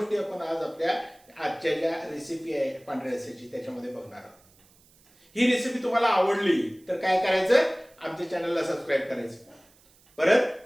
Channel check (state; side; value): noise; right; hiss, 30 dB below the sound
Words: आपण आज आपल्या आजच्या ज्या रेसिपी आहे पांढऱ्या रस्स्याची त्याच्यामध्ये बघणार आहोत। ही रेसिपी तुम्हाला आवडली तर काय करायचं, आमच्या चॅनलला सबस्क्राईब करायचं। परत